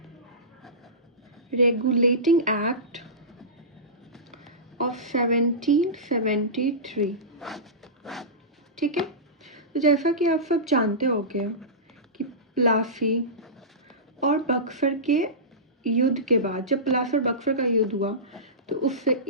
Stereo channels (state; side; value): normal; both; correlation -0.19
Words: रेगुलेटिंग एक्ट ऑफ 1773। ठीक है, तो जैसा कि आप सब जानते होंगे कि प्लासी और बक्सर के युद्ध के बाद, जब प्लासी और बक्सर का युद्ध हुआ तो उससे